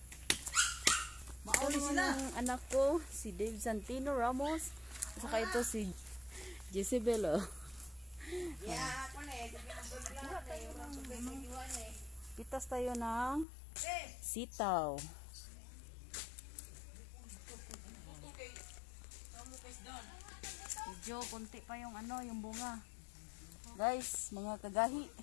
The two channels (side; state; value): right; drops out; at 13.5 s